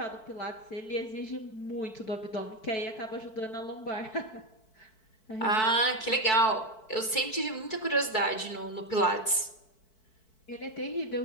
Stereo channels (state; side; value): late; right; 4.6 ms